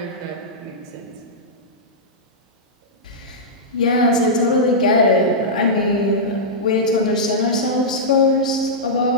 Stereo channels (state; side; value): normal; both; correlation -0.12